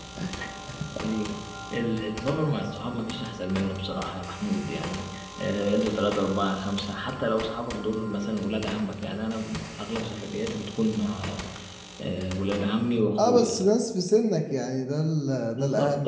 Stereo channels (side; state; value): both; identical; correlation 1.00